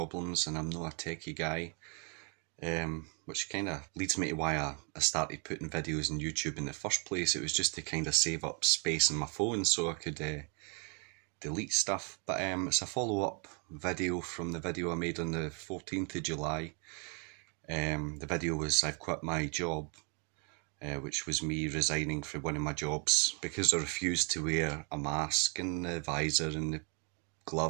and I'm not a techie guy. Which kind of leads me to why I started putting videos on YouTube in the first place. It was just to kind of save up space on my phone so I could delete stuff. But it's a follow-up video from the video I made on the 14th of July. The video was I've quit my job. Which was me resigning from one of my jobs because I refused to wear a mask and the visor and the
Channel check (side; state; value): left; quieter; 37.2 dB